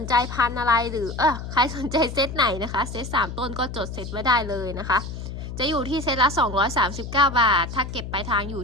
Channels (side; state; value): left; noise; hum, 8 dB below the sound